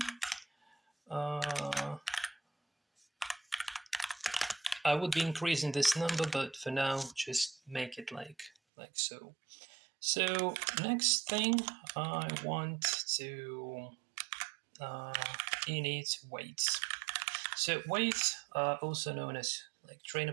I would be increasing this number, but for now, just make it like so. So next thing, I want to init weights. So weights are also known as like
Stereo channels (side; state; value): left; drops out; at 8.5 s